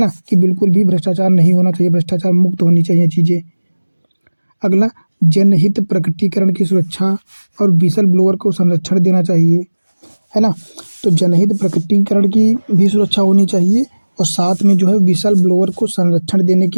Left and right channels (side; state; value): both; inverted; correlation -1.00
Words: कि बिल्कुल भी भ्रष्टाचार नहीं होना चाहिए, भ्रष्टाचार मुक्त होनी चाहिए चीज़ें। अगला, जनहित प्रकटीकरण की सुरक्षा और विसल ब्लोअर को संरक्षण देना चाहिए, है ना। तो जनहित प्रकटीकरण की भी सुरक्षा होनी चाहिए और साथ में विसल ब्लोअर को संरक्षण देने